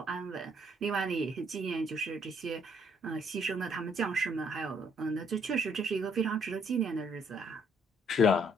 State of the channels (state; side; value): normal; both; correlation 0.67